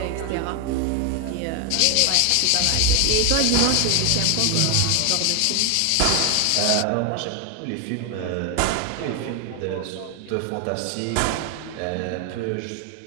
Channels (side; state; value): both; different; correlation 0.01